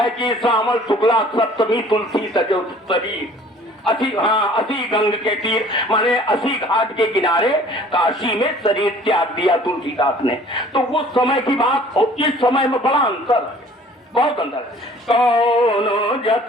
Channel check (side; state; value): both; normal; correlation 0.52